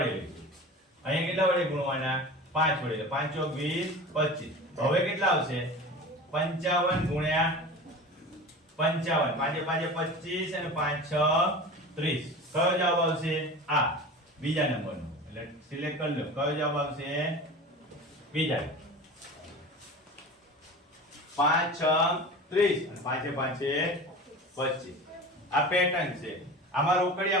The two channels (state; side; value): normal; both; correlation 0.34